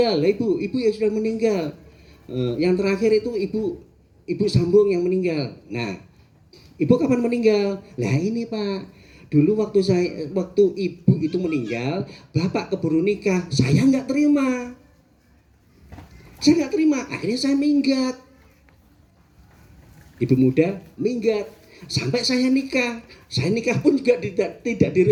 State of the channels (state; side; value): identical; both; correlation 1.00